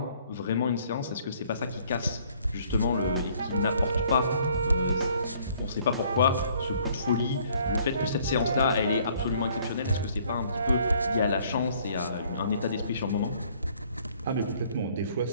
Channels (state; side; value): inverted; both; correlation -0.61